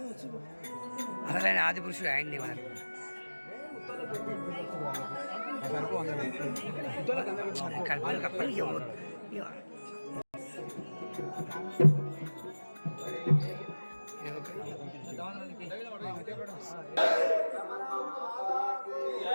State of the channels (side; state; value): both; inverted; correlation -1.00